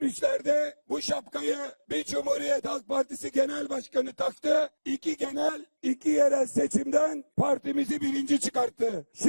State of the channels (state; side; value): inverted; both; correlation -1.00